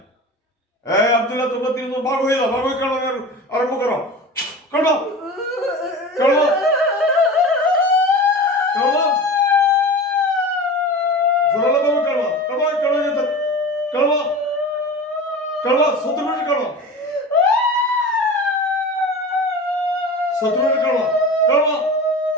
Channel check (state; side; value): normal; both; correlation 0.33